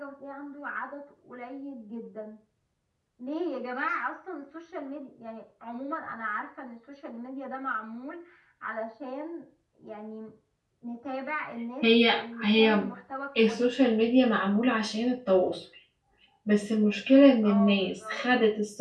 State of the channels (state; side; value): identical; both; correlation 1.00